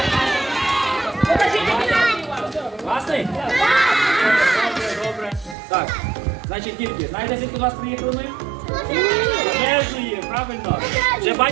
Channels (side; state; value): left; drops out; at 5.6 s